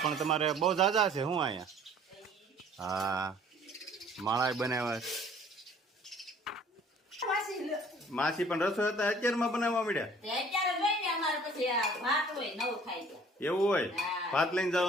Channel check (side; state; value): both; normal; correlation 0.53